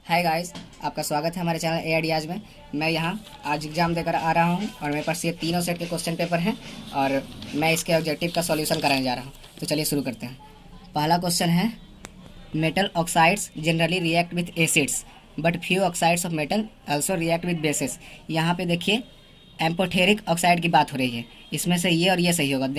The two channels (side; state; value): both; identical; correlation 1.00